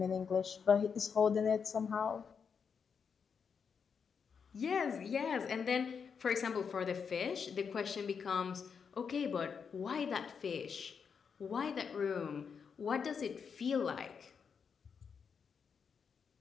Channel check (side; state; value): right; quieter; 6.3 dB